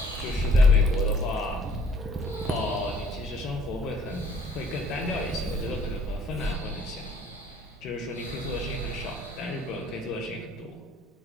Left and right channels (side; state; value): both; normal; correlation 0.57